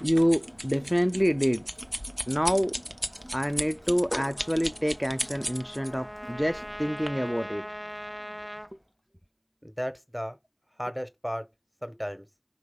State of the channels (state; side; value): identical; both; correlation 1.00